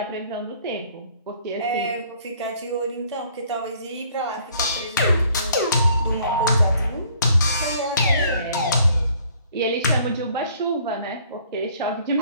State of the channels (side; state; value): both; inverted; correlation -0.58